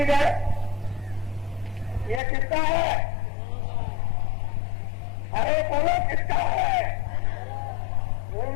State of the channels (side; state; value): right; drops out; at 2.2 s